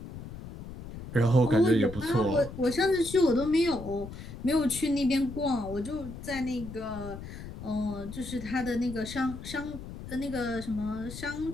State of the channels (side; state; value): left; noise; rumble, 11 dB below the sound